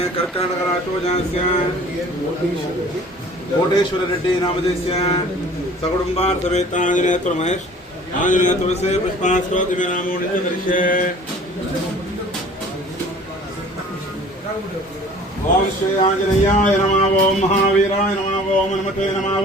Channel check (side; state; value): both; normal; correlation 0.48